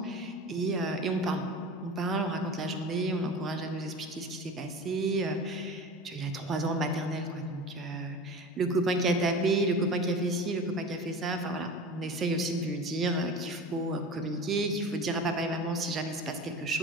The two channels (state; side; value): normal; both; correlation 0.34